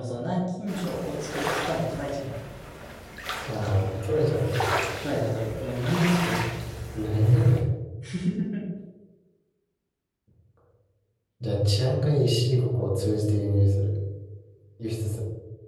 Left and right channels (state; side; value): identical; both; correlation 1.00